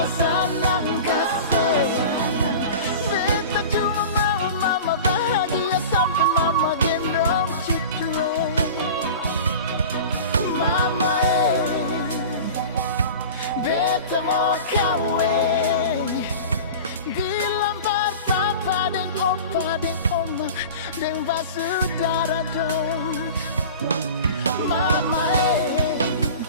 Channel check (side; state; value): both; inverted; correlation -0.35